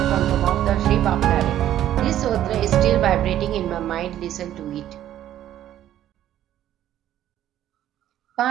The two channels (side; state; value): left; quieter; 12.0 dB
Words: from the mouth of Sri Bhavnare. This sutra is still vibrating in my mind. Listen to it.